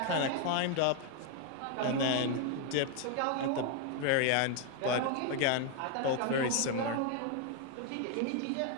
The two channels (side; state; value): both; different; correlation 0.01